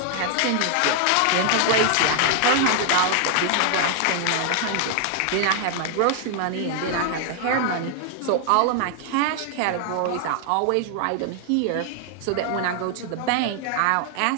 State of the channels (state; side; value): different; both; correlation 0.00